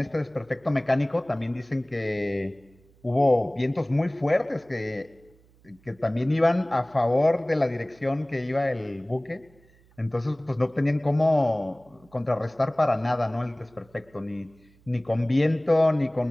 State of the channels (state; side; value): noise; right; hum, 30 dB below the sound